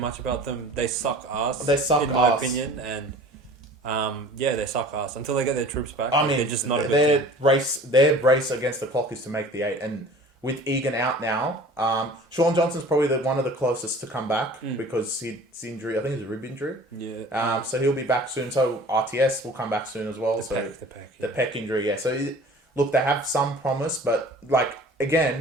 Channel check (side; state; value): both; normal; correlation 0.45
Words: about them. They suck ass. In my opinion, and they suck ass until they get their troops back. I mean, they're just not a good team. Their race against the clock is to make the 8, and with Egan out now, Sean Johnson's probably one of the closest to come back because his injury, I think it's a rib injury. Yeah. So he'll be back soon. So RTS will come back soon as well. The pec injury, yeah. So look, they have some promise, but